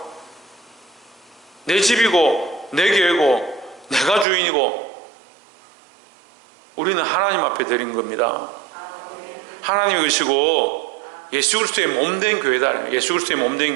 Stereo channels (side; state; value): left; drops out; at 4.2 s